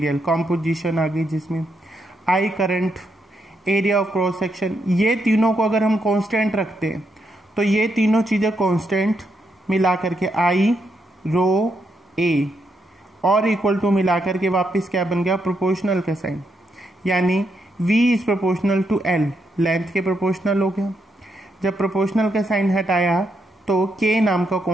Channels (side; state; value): both; normal; correlation 0.80